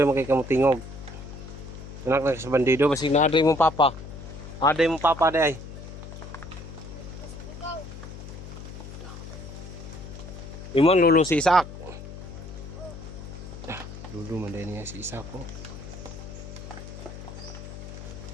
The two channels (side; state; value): left; noise; hum, 12 dB below the sound